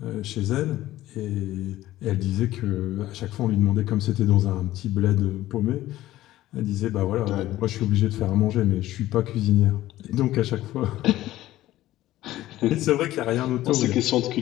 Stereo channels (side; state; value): right; quieter; 15.1 dB